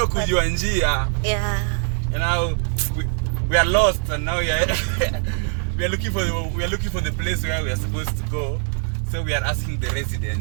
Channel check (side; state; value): left; silent; 56 dB below the other